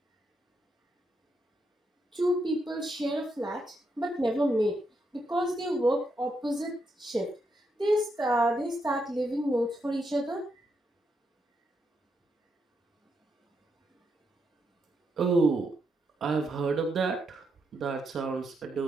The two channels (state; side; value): normal; both; correlation 0.81